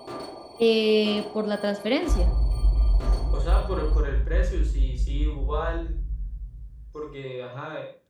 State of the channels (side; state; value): both; identical; correlation 1.00